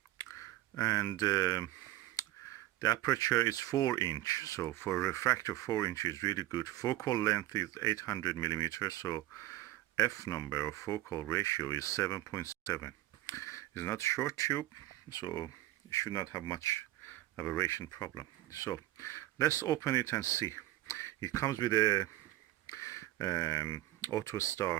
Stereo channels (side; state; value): left; quieter; 16.0 dB